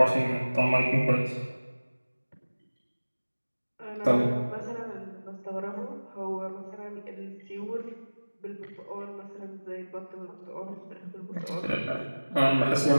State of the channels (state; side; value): inverted; both; correlation -1.00